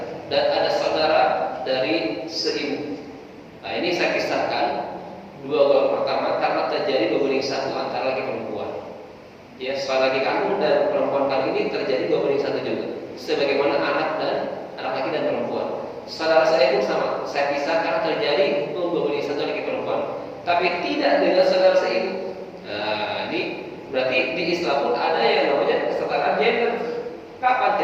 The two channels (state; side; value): identical; both; correlation 1.00